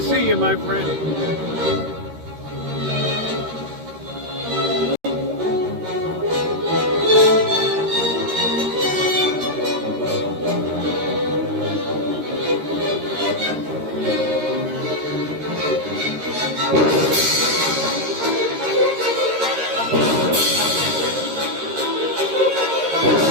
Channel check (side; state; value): left; late; 13 ms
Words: you, my friend.